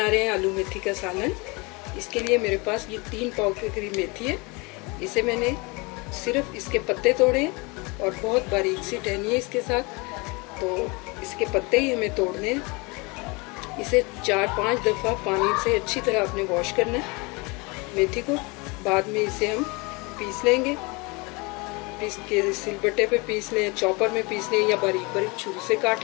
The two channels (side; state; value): right; quieter; 27.4 dB